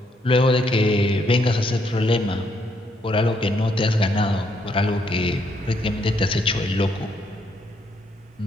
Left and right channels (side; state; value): both; normal; correlation 0.73